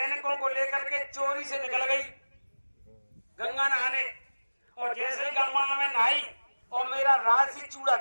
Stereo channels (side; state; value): both; inverted; correlation -1.00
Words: को लेकर के चोरी से निकल गई गंगा नहाने, और जैसे ही गंगा में नहाई और मेरा राजसी चूड़ा